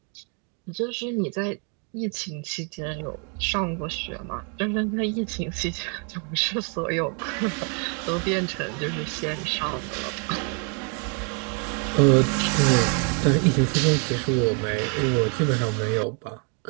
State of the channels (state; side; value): quieter; left; 38.5 dB